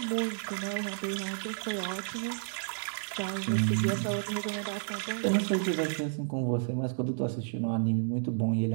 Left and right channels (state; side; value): silent; left; digital silence